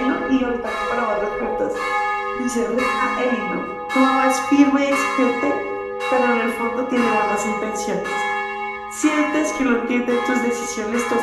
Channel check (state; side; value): identical; both; correlation 1.00